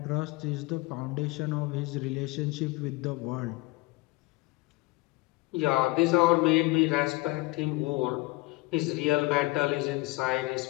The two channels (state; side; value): quieter; right; 22.2 dB